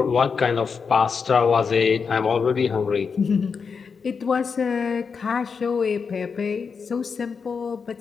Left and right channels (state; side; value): quieter; right; 5.6 dB